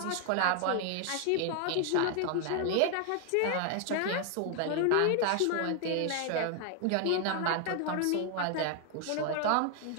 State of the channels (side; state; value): both; different; correlation 0.00